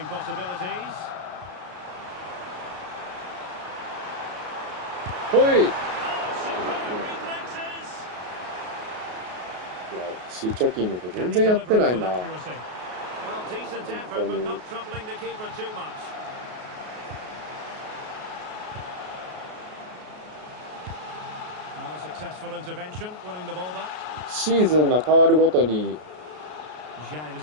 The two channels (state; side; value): late; left; 33 ms